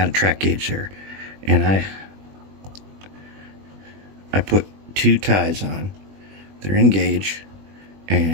a track gauge there, and I put 2 ties on. They're in gauge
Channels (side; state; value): left; late; 20 ms